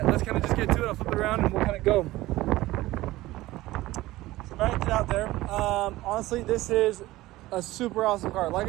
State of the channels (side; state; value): left; quieter; 17.6 dB